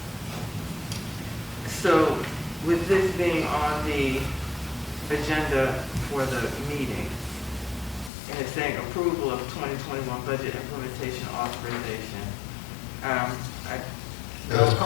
So with this being on the agenda for the meeting, and it's saying approval of 2021 budget implementation authorization, It's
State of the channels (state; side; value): drops out; right; at 8.1 s